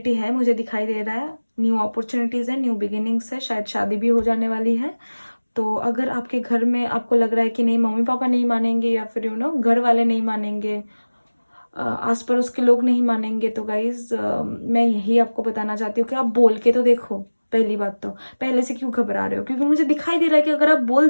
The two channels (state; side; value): inverted; both; correlation -1.00